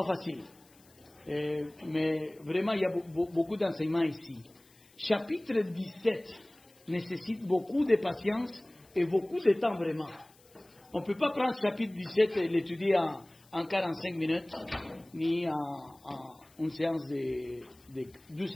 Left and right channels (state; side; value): noise; left; hiss, 29 dB below the sound